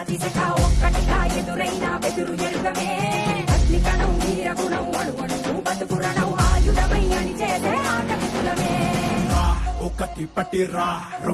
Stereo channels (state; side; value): identical; both; correlation 1.00